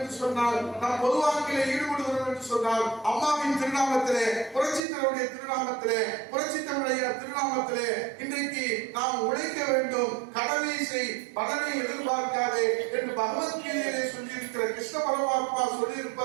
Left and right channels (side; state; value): left; drops out; at 4.8 s